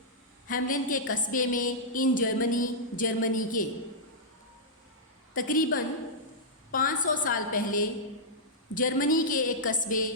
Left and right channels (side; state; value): both; normal; correlation -0.10